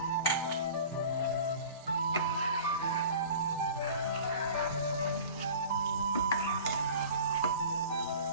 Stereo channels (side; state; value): both; inverted; correlation -0.41